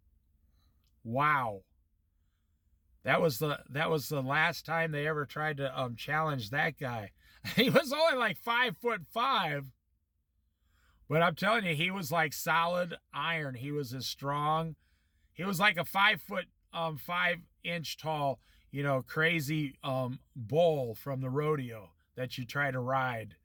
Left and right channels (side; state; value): both; identical; correlation 1.00